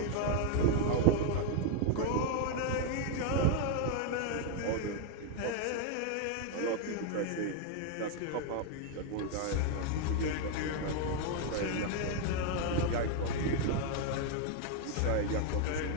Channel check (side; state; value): both; different; correlation 0.01